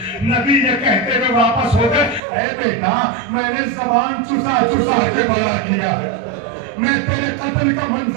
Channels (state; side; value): drops out; left; at 2.2 s